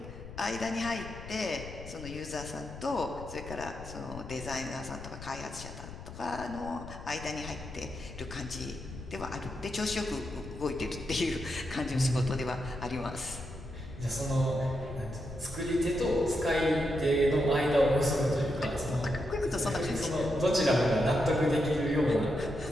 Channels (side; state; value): left; noise; rumble, 12 dB below the sound